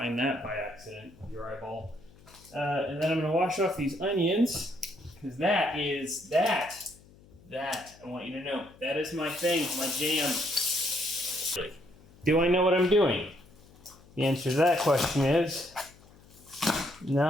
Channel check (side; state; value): left; noise; hum, 25 dB below the sound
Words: that by accident with your eyeball. And then I'm gonna wash off these onions because that I want you to know, that is my thing, my jam. Do I know what I'm doing? The answer to that question is